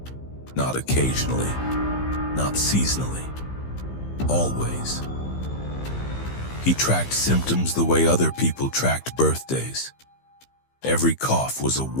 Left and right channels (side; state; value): right; late; 15 ms